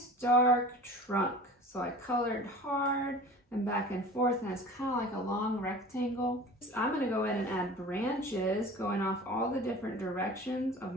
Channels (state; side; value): normal; both; correlation 0.40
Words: dark trunk. So I colored hard and back and forth, and it's kind of like a long rectangle. I'm going to go in and add branches going off all the different directions of